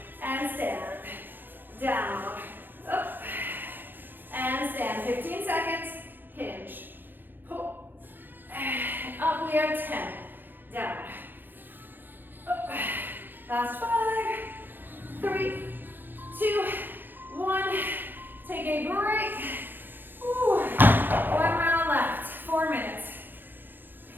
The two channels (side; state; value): left; late; 0.093 ms